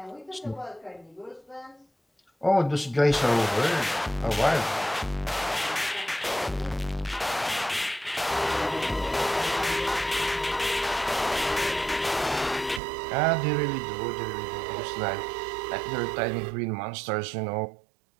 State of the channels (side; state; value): left; drops out; at 12.8 s